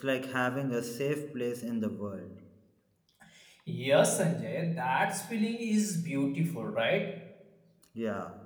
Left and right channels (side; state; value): both; identical; correlation 1.00